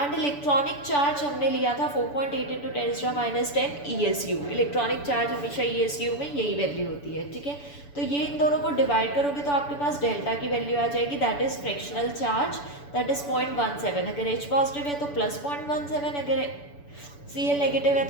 इलेक्ट्रॉनिक चार्ज हमने लिया था 4.8 into 10 to the minus 10 ESU. Electronic charge हमेशा ESU में यही वैल्यू होती है. ठीक है, तो ये इन दोनों को डिवाइड करोगे तो आपके पास डेल्टा की वैल्यू आ जाएगी, that is fractional charge, that is 0.17. अगर H पॉजिटिव है तो प्लस 0.17, अगर Cl नेगेटिव है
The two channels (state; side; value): late; right; 6.9 ms